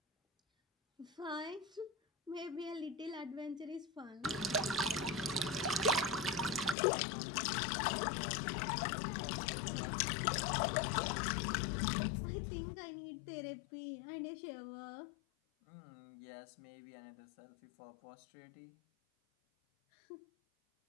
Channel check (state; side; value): drops out; right; at 6.8 s